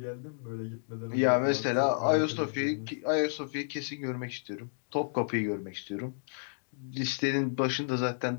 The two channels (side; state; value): right; silent; digital silence